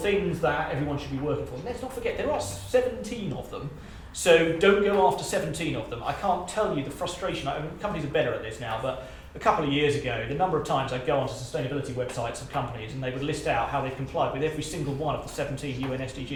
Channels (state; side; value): identical; both; correlation 1.00